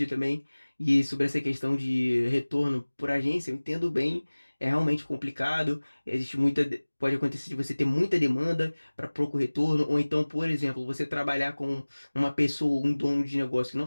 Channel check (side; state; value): both; inverted; correlation -1.00